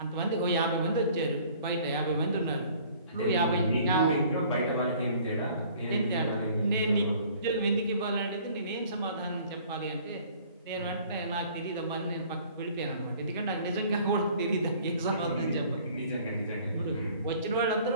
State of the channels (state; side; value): inverted; both; correlation -0.53